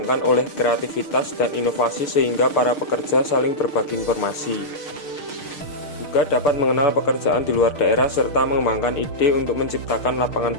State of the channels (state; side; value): late; right; 6.5 ms